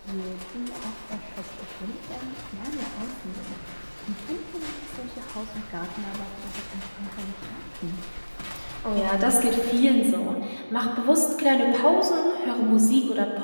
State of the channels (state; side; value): inverted; both; correlation -1.00